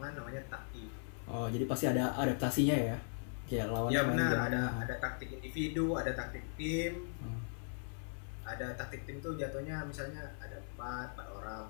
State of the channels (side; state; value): right; silent; 52 dB below the other